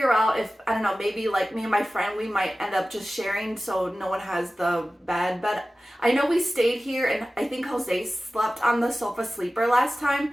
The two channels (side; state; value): both; normal; correlation 0.96